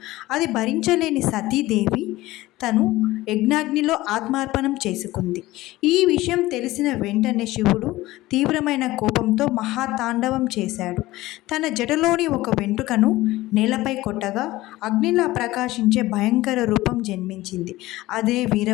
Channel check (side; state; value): right; quieter; 17.8 dB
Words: అది భరించలేని సతీదేవి తను యజ్ఞాగ్నిలో ఆత్మార్పణం చేసుకుంది. ఈ విషయం తెలిసిన వెంటనే శివుడు తీవ్రమైన కోపంతో మహాతాండవం చేశాడు. తన జటలోని ఒక వెంట్రుకను నేలపై కొట్టగా అగ్నిలా ప్రకాశించే భయంకర రూపం జన్మించింది. అదే